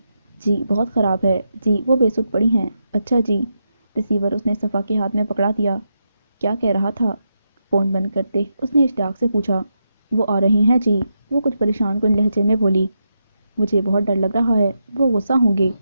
جی بہت خراب ہے۔ جی وہ بے سود پڑی ہیں۔ اچھا جی۔ ریسیور اس نے صفا کے ہاتھ میں پکڑا دیا۔ کیا کہہ رہا تھا؟ فون بند کرتے اس نے اشتیاق سے پوچھا۔ وہ آ رہی ہیں جی، وہ کچھ پریشان کن لہجے میں بولی۔ مجھے بہت ڈر لگ رہا ہے، وہ غصہ ہوں گے،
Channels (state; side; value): inverted; both; correlation -0.85